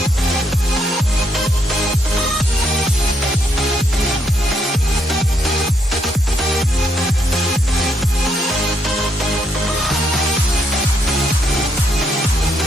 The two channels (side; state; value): both; normal; correlation 0.73